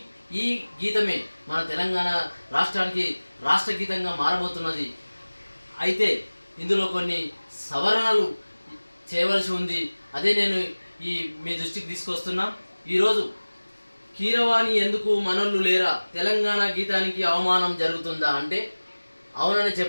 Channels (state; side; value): inverted; both; correlation -1.00